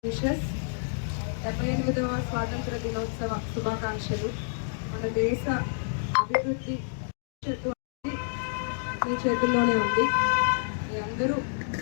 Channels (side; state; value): right; silent; digital silence